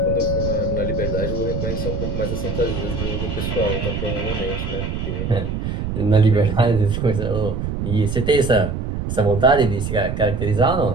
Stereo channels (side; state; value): right; noise; rumble, 4 dB below the sound